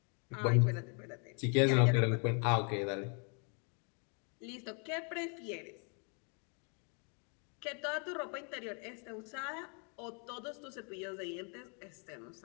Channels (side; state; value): right; quieter; 38.0 dB